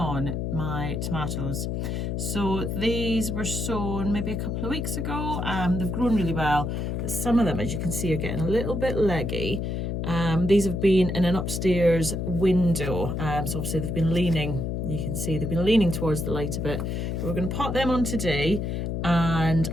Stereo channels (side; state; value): left; noise; hum, 2 dB below the sound